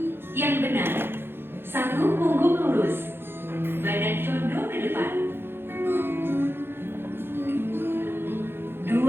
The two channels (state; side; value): late; left; 0.11 ms